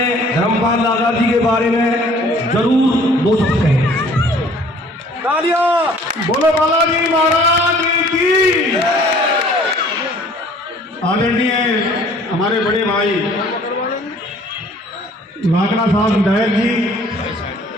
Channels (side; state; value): both; normal; correlation 0.54